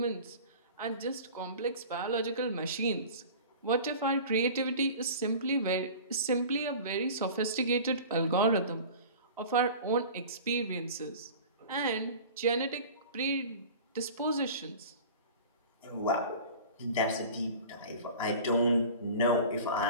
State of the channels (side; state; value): both; inverted; correlation -0.39